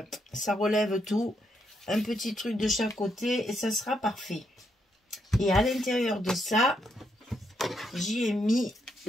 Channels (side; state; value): both; normal; correlation 0.78